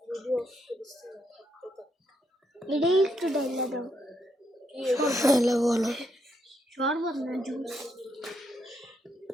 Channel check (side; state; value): both; normal; correlation 0.77